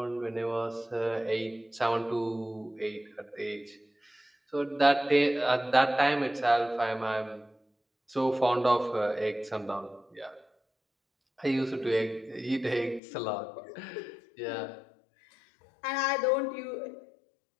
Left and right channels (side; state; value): right; drops out; at 13.0 s